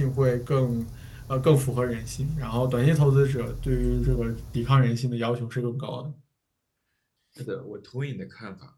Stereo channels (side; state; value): both; identical; correlation 1.00